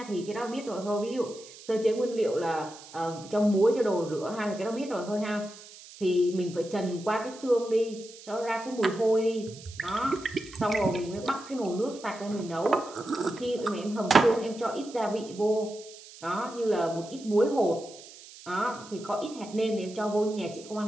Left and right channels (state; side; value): noise; right; hiss, 18 dB below the sound